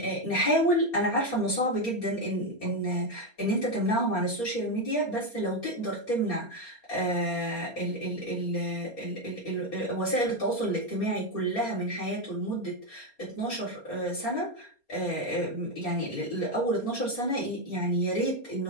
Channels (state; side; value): late; right; 4.3 ms